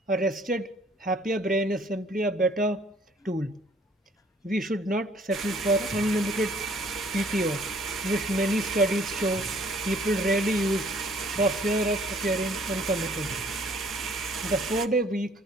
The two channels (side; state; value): both; normal; correlation 0.59